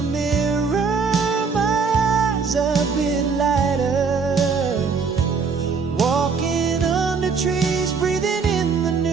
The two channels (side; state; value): left; quieter; 5.2 dB